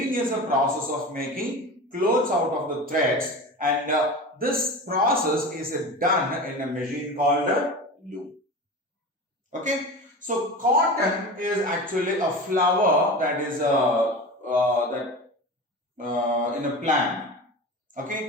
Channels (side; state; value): both; normal; correlation 0.30